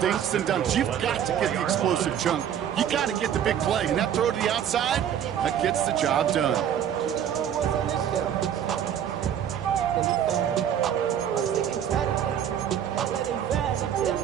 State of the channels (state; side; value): quieter; left; 9.5 dB